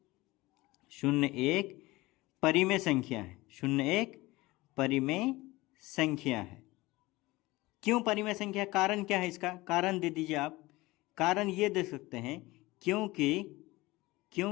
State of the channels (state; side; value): quieter; right; 20.3 dB